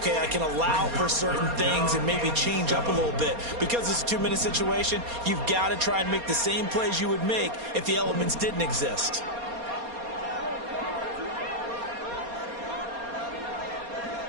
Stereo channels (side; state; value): left; late; 4.2 ms